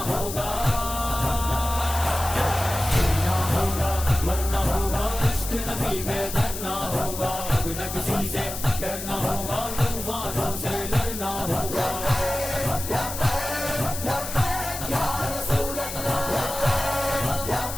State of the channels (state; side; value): noise; left; hiss, 8 dB below the sound